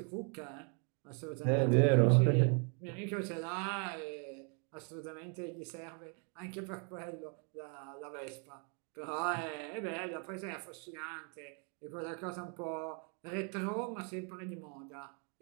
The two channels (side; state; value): left; quieter; 39.4 dB